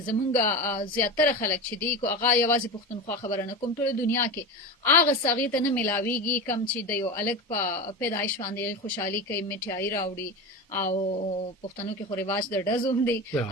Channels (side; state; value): both; normal; correlation 0.24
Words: زمونږ زیاتره خلک چې دي کو هغه یوازې پښتونخوا خبره نه کوم ټوله دنیا کې هغه څه هغې ته نه میلاویږي کم چې د یو هلک په پیدایش باندې خوشحالي کوي میټیایي راوړي او پښتنو کې خو رواج د ډزو هم دی